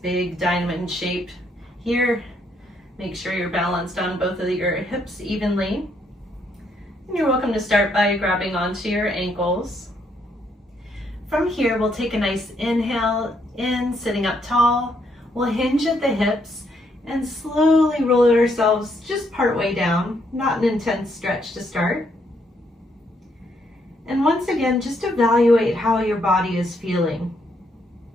diamond shape here. Make sure you're balanced on both of your hips evenly. And you're welcome to start by grabbing onto your ankles. From here, we'll take a nice inhale in, sitting up tall. We'll hinge at the hips and slowly roll ourselves just part way down, not an intense stretch to start. And once again, just evaluate how your body is feeling.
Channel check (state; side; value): normal; both; correlation 0.73